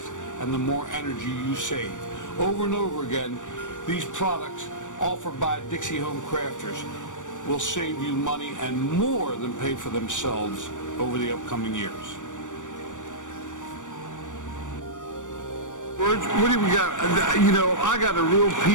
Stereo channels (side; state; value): right; late; 0.86 ms